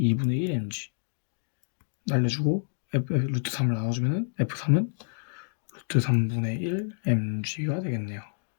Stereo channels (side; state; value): right; silent; digital silence